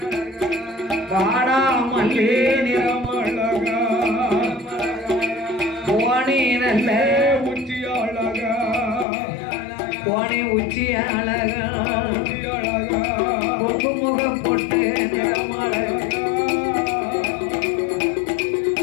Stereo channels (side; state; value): right; drops out; at 9.1 s